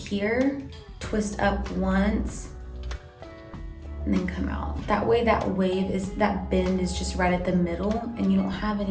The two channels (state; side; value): identical; both; correlation 1.00